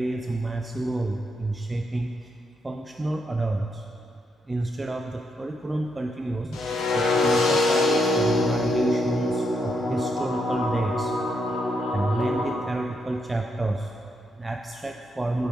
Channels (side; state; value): both; normal; correlation 0.79